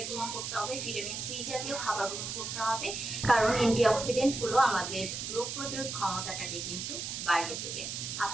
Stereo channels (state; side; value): noise; right; hiss, 5 dB below the sound